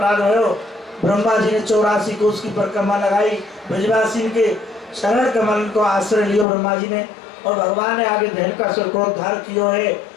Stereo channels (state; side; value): drops out; right; at 6.5 s